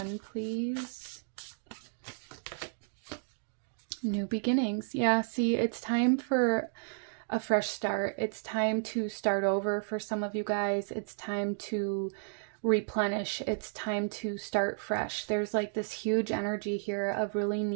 please. New beginnings. Yeah, see, it's time for a fresh start. It's time to start over for some of you guys. It's time to replenish. It's time to start fresh. There's like this huge energy here of really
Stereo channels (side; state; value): left; silent; digital silence